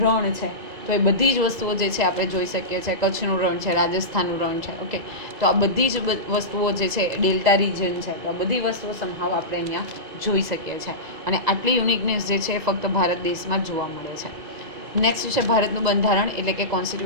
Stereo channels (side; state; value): left; late; 2.0 ms